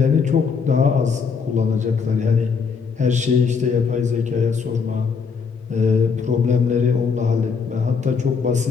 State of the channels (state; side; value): quieter; right; 5.6 dB